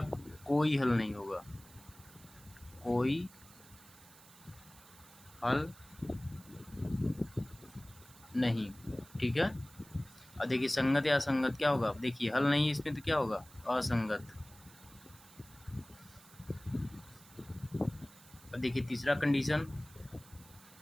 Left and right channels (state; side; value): noise; right; hiss, 22 dB below the sound